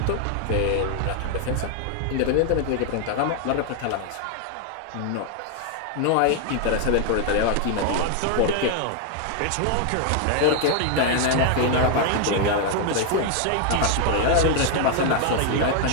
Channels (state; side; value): different; both; correlation 0.00